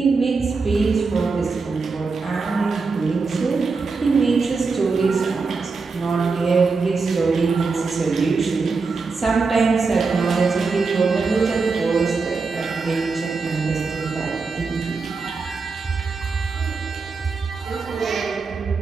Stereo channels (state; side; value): quieter; left; 4.4 dB